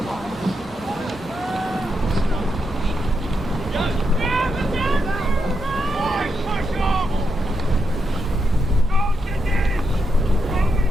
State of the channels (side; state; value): both; normal; correlation 0.83